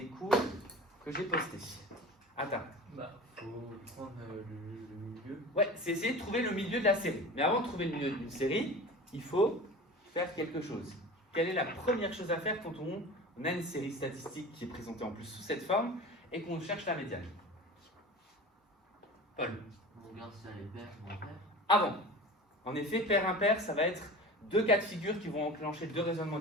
cours que j'ai postés? Attends. Faut prendre le milieu. Ouais, c'est essayer de trouver le milieu de la série. Mais avant de trouver le milieu d'une série, il faut faire quelque chose. Quelle est la première chose à faire quand on a une série statistique qui est présentée en plus sous cette forme et qu'on cherche la médiane? Paul. On regarde si elle est paire ou impaire. Avant. En effet, pair-impair, ça va être deux cas de figure qui vont enclencher deux raisonnements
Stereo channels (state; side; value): normal; both; correlation 0.36